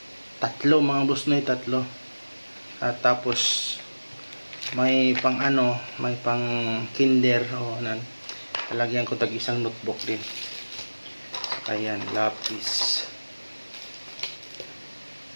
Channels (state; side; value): inverted; both; correlation -1.00